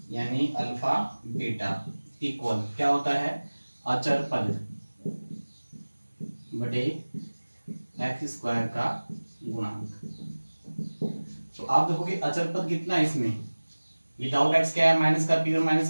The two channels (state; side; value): inverted; both; correlation -1.00